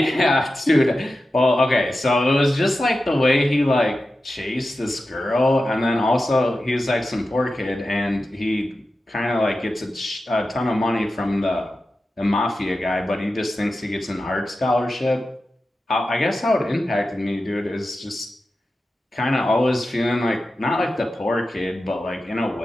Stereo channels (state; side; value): normal; both; correlation 0.92